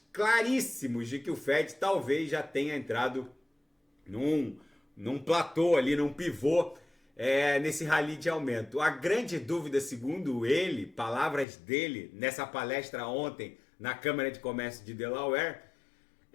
claríssimos de que o Fed talvez já tenha entrado num platô ali, num pivô, nesse rally de aumento. A grande dúvida, segundo ele, palavras dele, nessa palestra ontem na Câmara de Comércio de Delaware,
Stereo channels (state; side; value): drops out; right; at 11.5 s